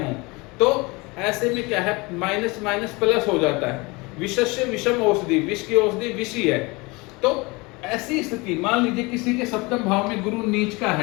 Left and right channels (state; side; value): quieter; right; 25.5 dB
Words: हों, तो ऐसे में क्या है, माइनस माइनस प्लस हो जाता है। विषस्य विषम औषधि, विष की औषधि विष ही है। तो ऐसी स्थिति, मान लीजिए किसी के सप्तम भाव में गुरु नीच का